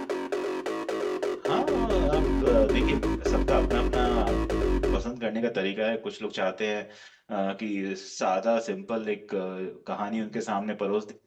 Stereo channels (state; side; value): identical; both; correlation 1.00